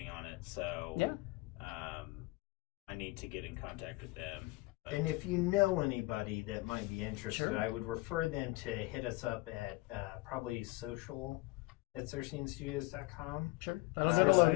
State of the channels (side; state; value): right; quieter; 21.5 dB